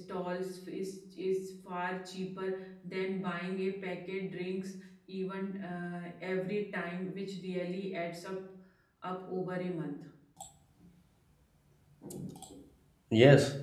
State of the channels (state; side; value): identical; both; correlation 1.00